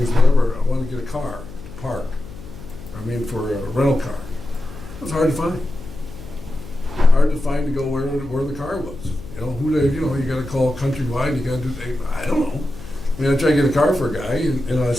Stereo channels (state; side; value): noise; left; hum, 15 dB below the sound